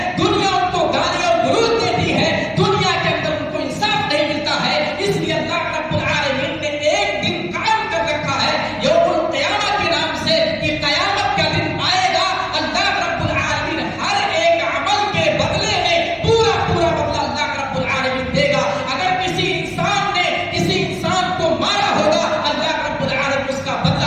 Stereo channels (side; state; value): both; identical; correlation 1.00